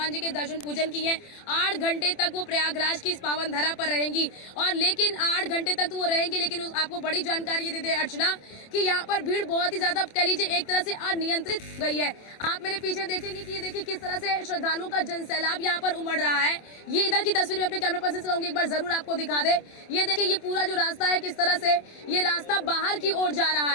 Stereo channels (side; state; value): right; late; 27 ms